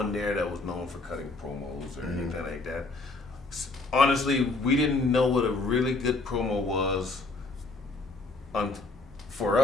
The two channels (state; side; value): quieter; right; 3.4 dB